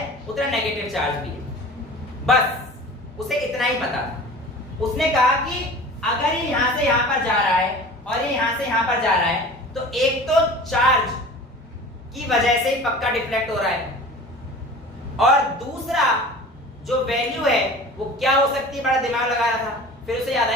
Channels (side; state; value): both; normal; correlation 0.40